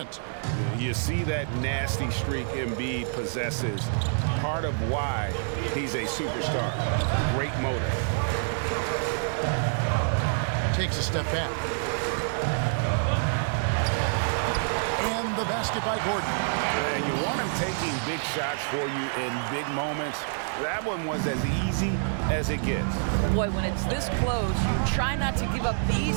You see that nasty streak Embiid possesses. Part of why he's a superstar. Great motor. Takes a step back. And the basket by Gordon. And you want him taking big shots for you in big moments. That one was as easy as it gets. Boy, when it's this close, you try not to give up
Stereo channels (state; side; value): silent; left; 60 dB below the other